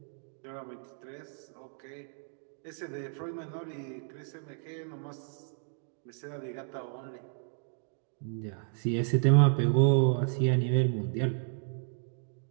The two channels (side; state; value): left; silent; digital silence